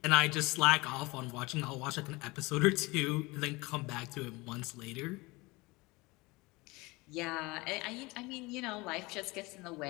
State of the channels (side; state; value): right; quieter; 23.5 dB